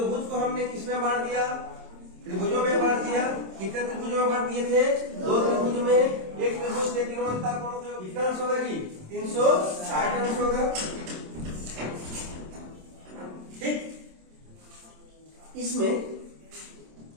को हमने किसमें बांट दिया? त्रिभुजों में बांट दिया। कितने त्रिभुजों में बांट दिए थे? 2 त्रिभुज में। एक त्रिभुज के तीनों अंतः कोणों का कितना अंश होगा जी? 360 अंश होगा। ठीक। इसमें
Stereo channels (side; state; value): left; late; 27 ms